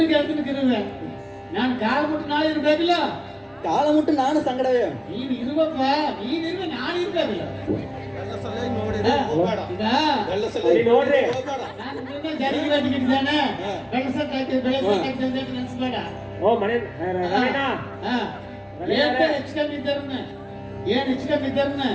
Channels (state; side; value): identical; both; correlation 1.00